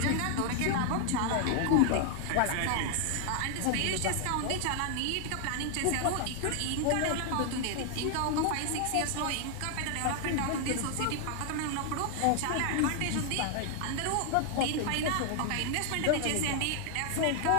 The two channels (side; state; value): both; different; correlation 0.00